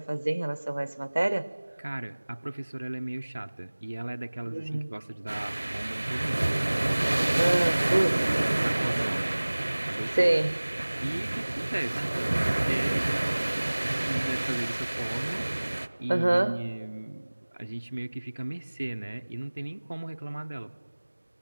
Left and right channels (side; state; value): both; inverted; correlation -1.00